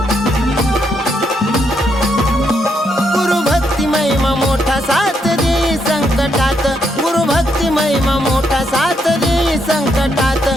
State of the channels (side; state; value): both; normal; correlation 0.77